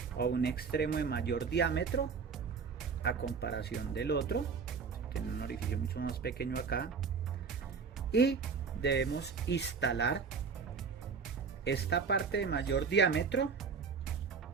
o un extremo de mayor diámetro a comparación del otro. Tiene un orificio mucho más pequeño acá, y debemos instalar esta parte de mayor diámetro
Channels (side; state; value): left; quieter; 5.5 dB